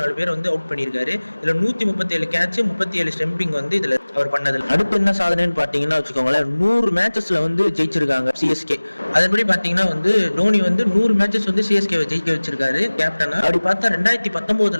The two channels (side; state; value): both; inverted; correlation -1.00